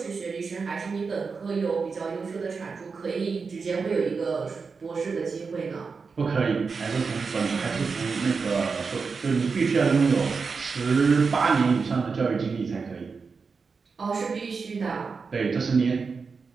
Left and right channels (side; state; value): left; quieter; 5.0 dB